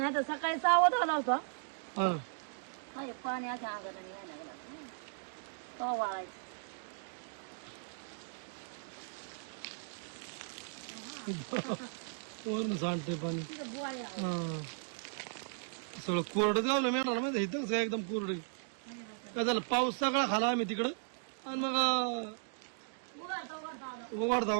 तर सकाळी 6 वाजता आला होता. हा पाणी अशा अंगाला यायला लागला तो वाळायचं. वरून सांडतंय पाणी. तिथं बुवाळी आहे. हा सगळं कोरडं गावलं मेळणार माहिती इथं सगळं एकदम कोरडं. काय झालं पाऊस सगळा खाला आम्ही तिकडं आणि मग उघडता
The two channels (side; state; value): left; silent; digital silence